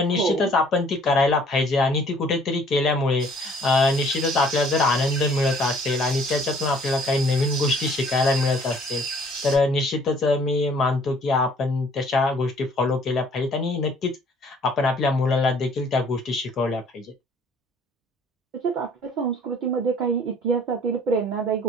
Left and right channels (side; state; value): both; normal; correlation 0.57